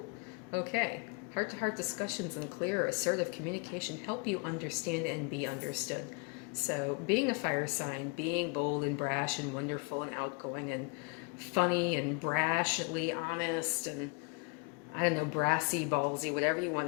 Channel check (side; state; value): right; quieter; 32.0 dB